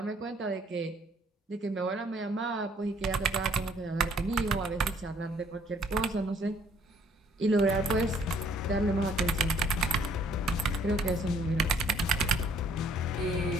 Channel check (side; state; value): both; normal; correlation 0.62